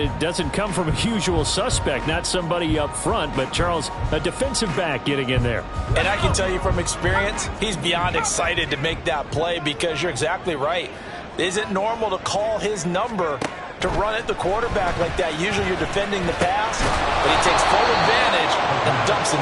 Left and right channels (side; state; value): both; identical; correlation 1.00